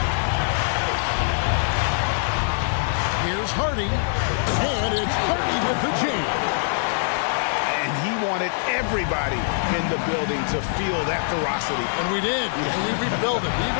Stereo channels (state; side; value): silent; right; digital silence